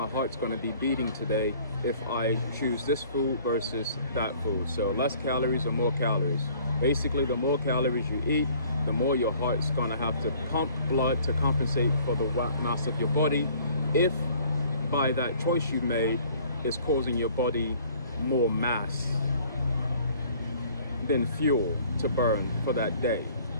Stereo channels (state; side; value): inverted; both; correlation -0.55